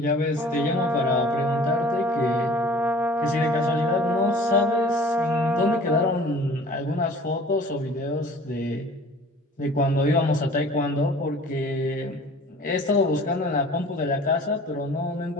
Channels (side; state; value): both; normal; correlation 0.47